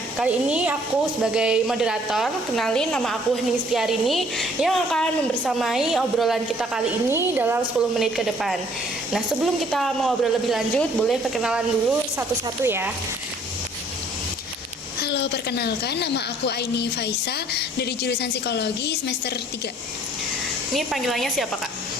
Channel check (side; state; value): both; normal; correlation 0.59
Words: kali ini aku sebagai moderator, kenalin nama aku Hening Setiarini yang akan membersamai obrolan kita kali ini dalam 10 menit ke depan. Nah, sebelum kita mengobrol lebih lanjut, boleh perkenalan dulu satu-satu ya. Halo, perkenalkan nama aku Aini Faisa dari jurusan Psikologi semester 3. Ini panggilannya siapa, Kak?